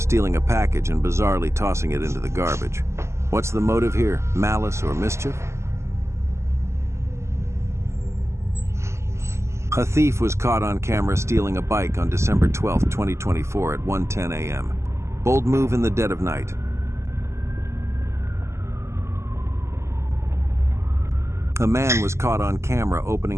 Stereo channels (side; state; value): left; late; 0.13 ms